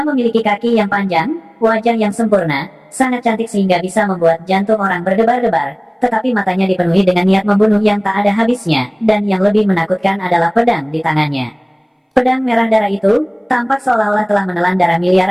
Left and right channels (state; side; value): identical; both; correlation 1.00